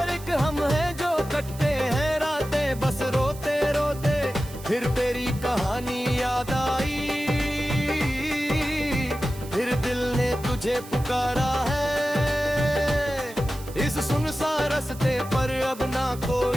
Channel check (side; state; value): right; noise; hiss, 18 dB below the sound